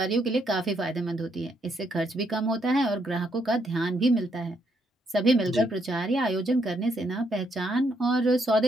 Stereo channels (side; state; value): both; normal; correlation 0.75